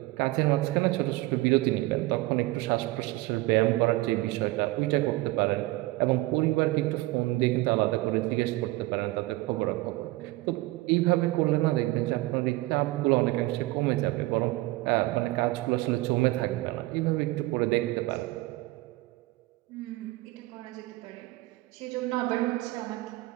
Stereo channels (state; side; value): quieter; left; 19.9 dB